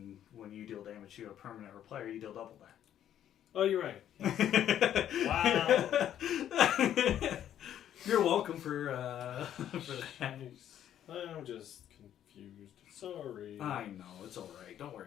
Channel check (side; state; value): right; quieter; 10.7 dB